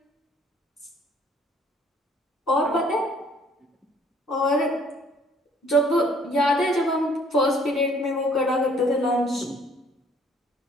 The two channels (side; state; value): both; normal; correlation 0.59